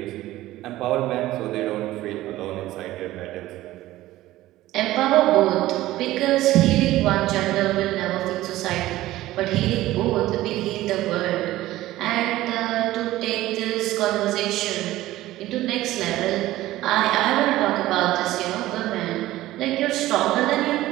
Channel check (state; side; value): quieter; left; 16.0 dB